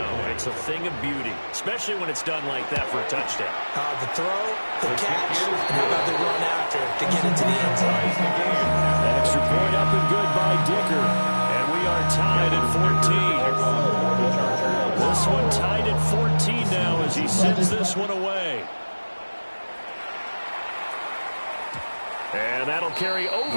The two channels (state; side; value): inverted; both; correlation -1.00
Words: it's a thing of beauty, especially when it's done like that for a touchdown. The throw, the catch, and how about the run after to get into the end zone? Extra point up and good by Dicker. And we are tied at 14. This one tied at 14 now as he sends this one away. And that'll carry